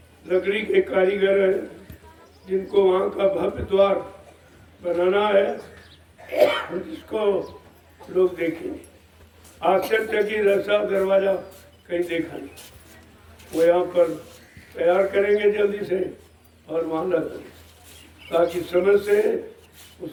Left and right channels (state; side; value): identical; both; correlation 1.00